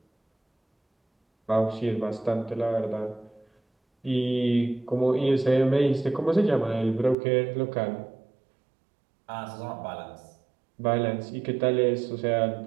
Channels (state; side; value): drops out; left; at 7.2 s